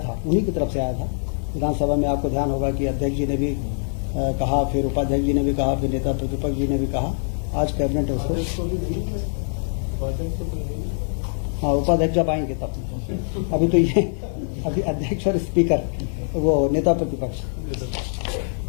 था उन्हीं की तरफ से आया था। विधानसभा में आपको ध्यान होगा कि अध्यक्ष जी ने भी कहा, फिर उपाध्यक्ष जी ने भी कहा, फिर नेता प्रतिपक्ष जी ने भी कहा। आज कैबिनेट उसको, हाँ उपाध्यक्ष जब आएंगे तब, अभी तो ये अभी अध्यक्ष और स्पीकर वो नेता प्रतिपक्ष,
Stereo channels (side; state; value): right; silent; digital silence